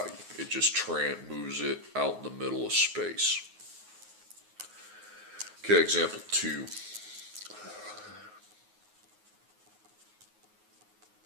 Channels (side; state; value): left; late; 9.5 ms